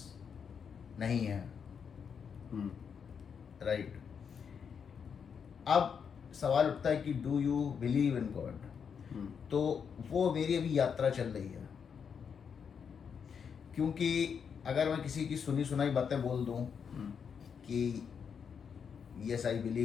नहीं है. राइट. अब सवाल उठता है कि do you believe in God. तो वो मेरी अभी यात्रा चल रही है, क्योंकि अगर मैं किसी की सुनी सुनाई बातें बोल दूं कि yes I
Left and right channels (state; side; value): quieter; right; 6.8 dB